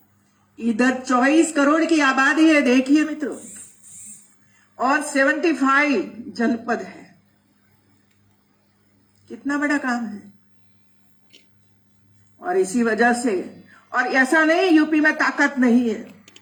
इधर 24 करोड़ की आबादी है, देखिए मित्रों, और 75 जनपद है। कितना बड़ा काम है। और इसी वजह से, और ऐसा नहीं यूपी में ताकत नहीं है,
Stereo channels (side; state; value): both; identical; correlation 1.00